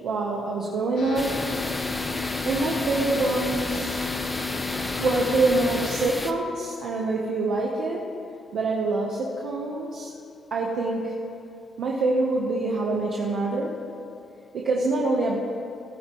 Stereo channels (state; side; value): normal; both; correlation 0.75